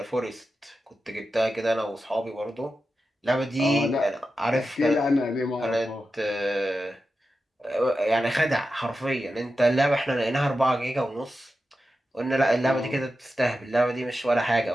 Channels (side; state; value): both; normal; correlation 0.91